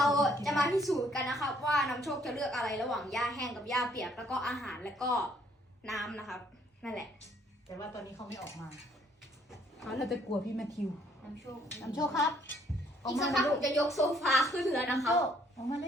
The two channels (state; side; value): normal; both; correlation 0.65